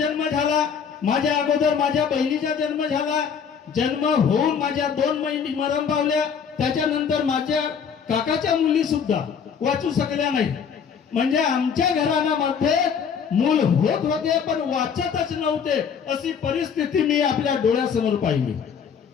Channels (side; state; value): right; quieter; 6.9 dB